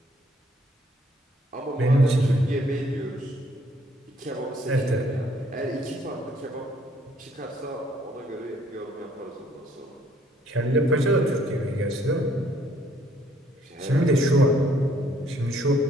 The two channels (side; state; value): both; normal; correlation 0.64